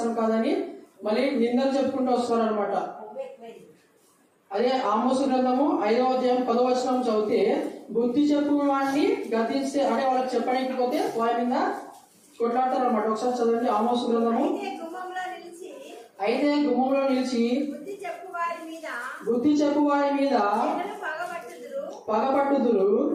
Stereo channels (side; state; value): both; identical; correlation 1.00